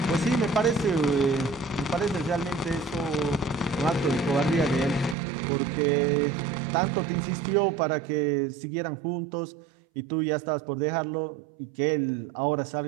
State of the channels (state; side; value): drops out; left; at 5.2 s